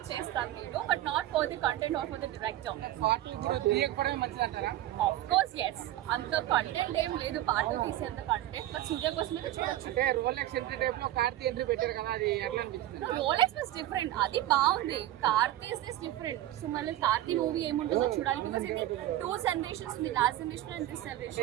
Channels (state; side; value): quieter; left; 14.1 dB